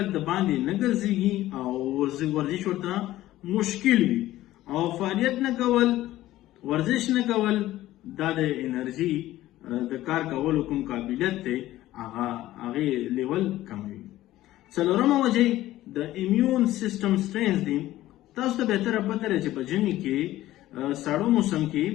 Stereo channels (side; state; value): right; quieter; 15.2 dB